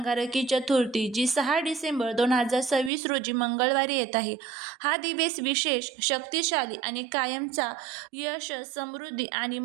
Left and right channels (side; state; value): left; drops out; at 2.9 s